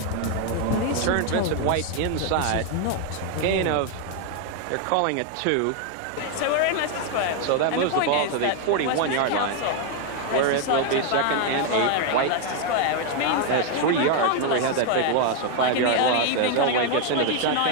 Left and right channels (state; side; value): different; both; correlation 0.00